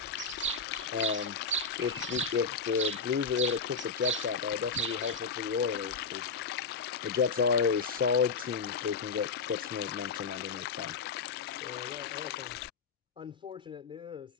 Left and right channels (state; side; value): quieter; right; 4.9 dB